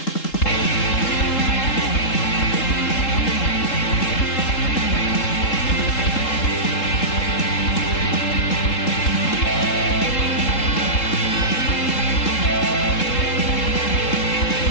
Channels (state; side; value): late; right; 3.7 ms